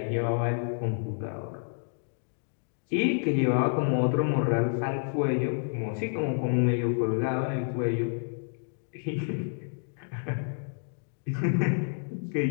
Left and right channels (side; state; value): right; silent; digital silence